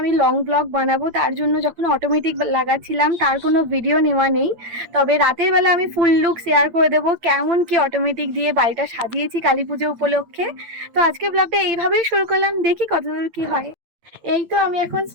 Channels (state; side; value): late; left; 8.8 ms